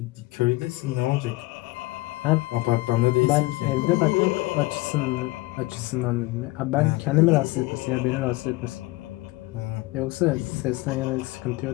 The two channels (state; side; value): quieter; right; 20.9 dB